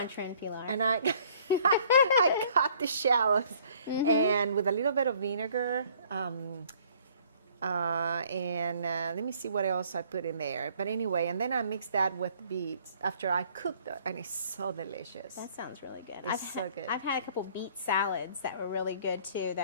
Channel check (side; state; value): both; inverted; correlation -0.58